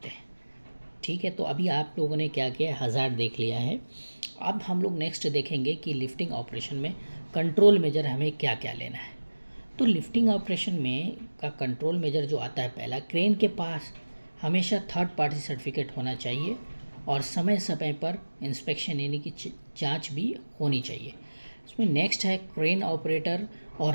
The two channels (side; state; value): both; inverted; correlation -1.00